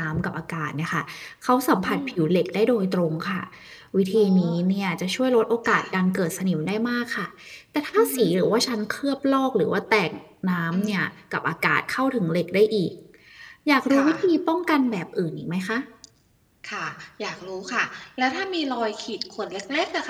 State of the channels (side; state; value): both; identical; correlation 1.00